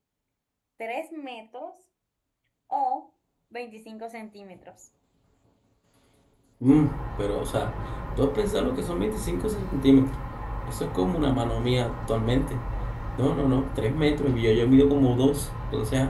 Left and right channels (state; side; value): identical; both; correlation 1.00